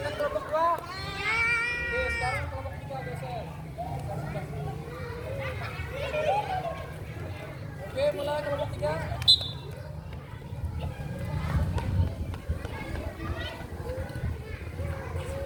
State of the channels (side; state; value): both; identical; correlation 1.00